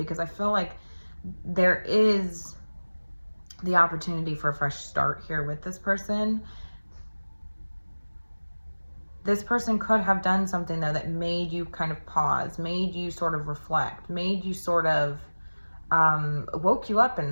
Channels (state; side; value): inverted; both; correlation -1.00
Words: I feel like there is the opportunity for a fresh start here with this person. This person could have done something though that made you kind of pause, made you sort of reflect, made you sort of woke you up